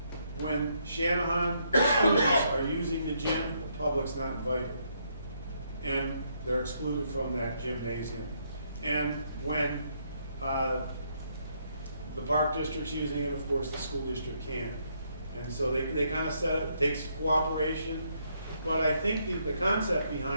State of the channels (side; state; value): both; inverted; correlation -0.74